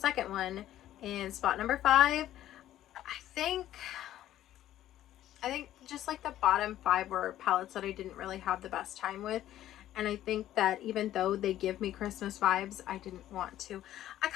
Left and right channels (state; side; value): quieter; right; 12.9 dB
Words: one, in spot number 5. I think just like the bottom 5 were palettes that I didn't really have the best time with, and I think that even though they give me Christmas vibes, I didn't want to. I